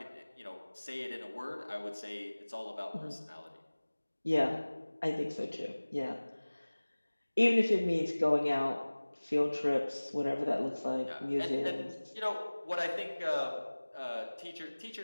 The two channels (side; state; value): both; inverted; correlation -1.00